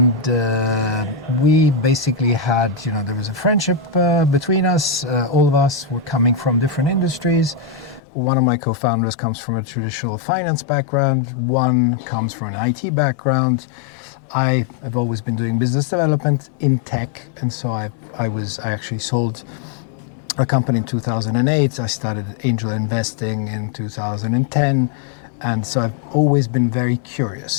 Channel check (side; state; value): right; drops out; at 8.0 s